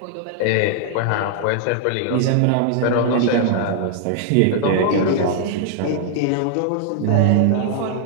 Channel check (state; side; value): different; both; correlation 0.00